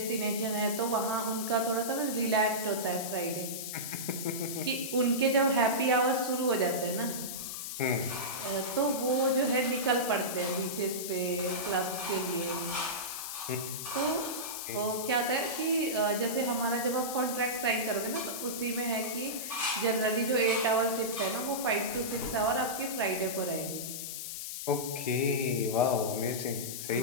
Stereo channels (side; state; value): left; noise; hiss, 6 dB below the sound